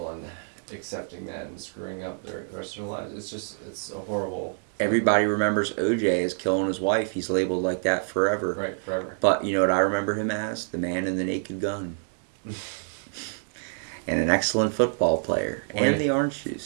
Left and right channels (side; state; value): left; silent; digital silence